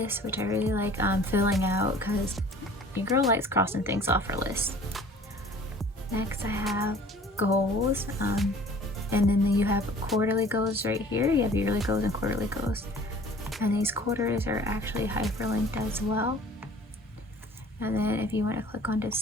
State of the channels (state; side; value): normal; both; correlation 0.48